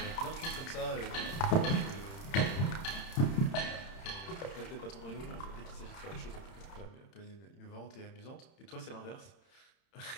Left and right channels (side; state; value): right; late; 31 ms